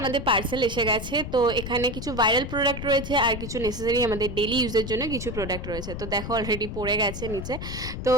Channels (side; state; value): left; noise; rumble, 7 dB below the sound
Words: পার্সেল এসে গেছে। তো এখানে কিছু ভাইরাল প্রোডাক্ট রয়েছে আর কিছু নেসেসারি আমাদের ডেলি ইউজের জন্য কিছু প্রোডাক্ট রয়েছে। তো দেখো অলরেডি পড়ে গেছে নিচে। তো